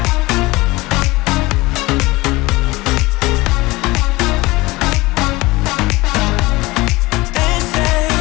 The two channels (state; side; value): quieter; right; 21.2 dB